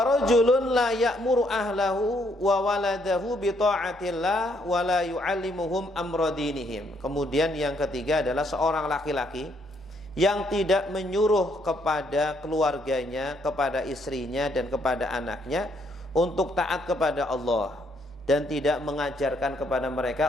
rajulun la ya'muru ahlahu wa waladahu bi ta'atillah wa la yu'allimuhum amra dinihim. Kemudian yang ketiga adalah seorang laki-laki yang tidak menyuruh kepada keluarganya, kepada istrinya dan kepada anaknya untuk taat kepada Allah dan tidak mengajarkan kepada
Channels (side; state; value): right; noise; hum, 28 dB below the sound